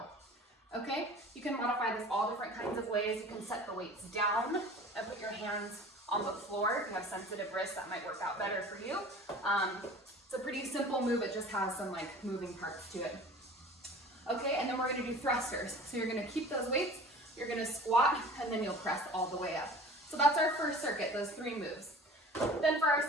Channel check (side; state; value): both; normal; correlation 0.42